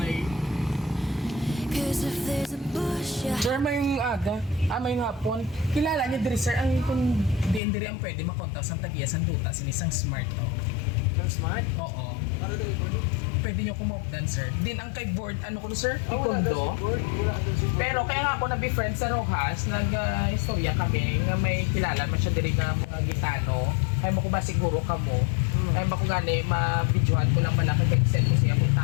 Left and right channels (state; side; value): drops out; right; at 7.6 s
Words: Sir, may aga, may hapon. Kilala niyo diri sir, ang kung diin diri ang pwede makontak sang tagiya sang duta sinisang smart to. Ang smart? Oo. Para dali ko. Pwede niyo kumopdan sir. Din ang kay board ano ko sir? Wala Ikondo. Pero kaya nga ako na-befriend sa Rojas, nag-istorya kami nga may kilala man siya diri nga mga gitano. Ay mo ko ba siguro kamo. Ay mo ko gani ma-videohan ko lang malaki kay send ko siya kung